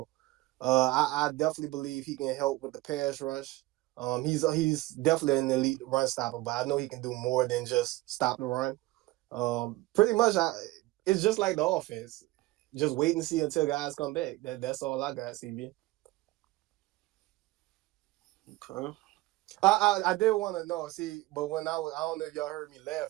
I definitely believe he can help with the pass rush. He's definitely an elite run stopper, but I know he can do more than just stop the run. Pretty much, it's just like the offense. Just wait and see until guys come back. That's all I got, CB. Okay. I did want to know. See, but when I don't know if y'all heard me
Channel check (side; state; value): left; quieter; 19.1 dB